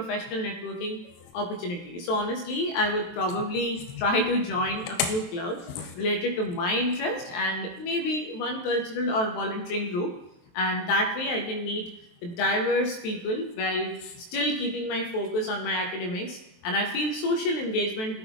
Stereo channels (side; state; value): right; late; 23 ms